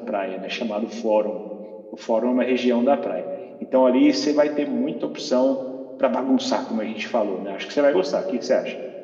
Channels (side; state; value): both; identical; correlation 1.00